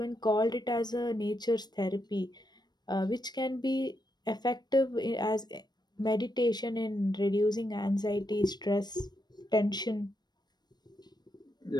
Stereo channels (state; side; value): late; right; 0.20 ms